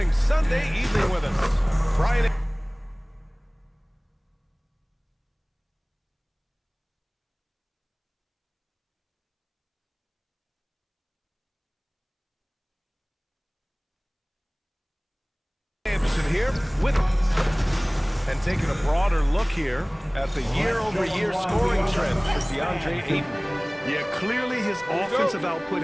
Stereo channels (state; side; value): identical; both; correlation 1.00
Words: Sunday evening with us. Brian. Anderson here with and taking a broader look here at the year-over-year scoring trend for DeAndre Ayton. Yeah, clearly his offensive output